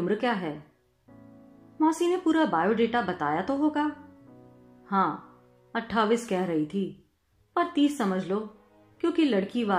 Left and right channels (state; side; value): identical; both; correlation 1.00